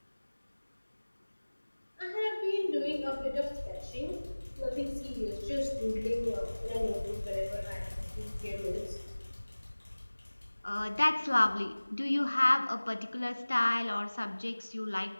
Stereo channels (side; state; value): both; inverted; correlation -1.00